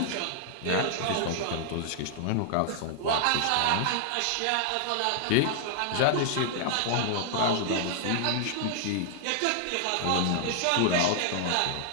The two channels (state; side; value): different; both; correlation -0.01